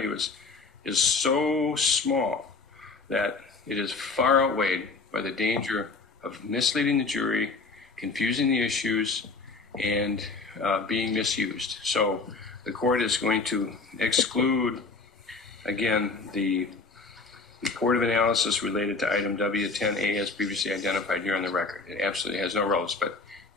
is so small that it is far outweighed by the danger of misleading the jury, confusing the issues, and being misused. So the court is going to exclude, again, the report of analysis related to item W10A as previously identified here on the record. It absolutely has no relevance. But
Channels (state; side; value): quieter; right; 4.0 dB